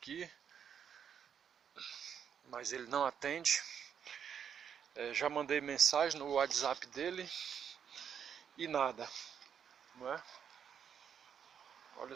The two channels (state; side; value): quieter; left; 8.0 dB